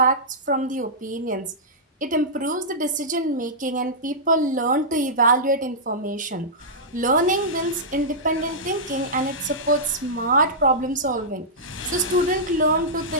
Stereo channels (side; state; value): both; normal; correlation -0.13